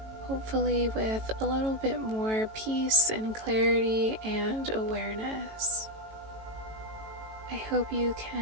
hopefully with a little bit more peace and clarity and awareness. I hope you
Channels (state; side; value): late; left; 18 ms